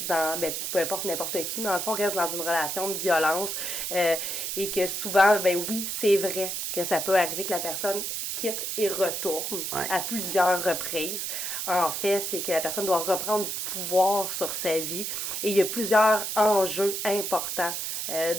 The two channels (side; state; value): right; noise; hiss, 3 dB below the sound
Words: dans, ben, peu importe n'importe qui, dans le fond, restent dans une relation de violence et que souvent, ben oui, c'est vrai que ça peut arriver que la personne quitte et retourne Ouais. à plusieurs reprises. En fait, c'est que la personne doit reprendre du pouvoir sur sa vie et il y a plusieurs enjeux importants,